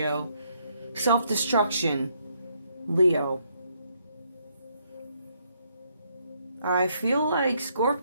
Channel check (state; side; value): inverted; both; correlation -0.72